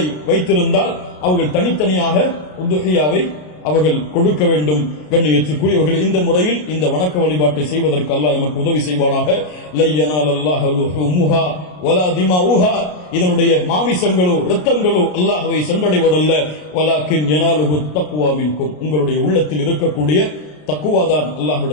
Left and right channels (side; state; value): right; late; 33 ms